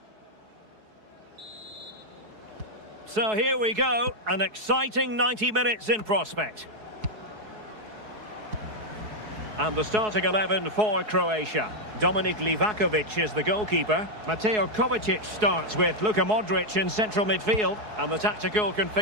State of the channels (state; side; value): late; left; 4.7 ms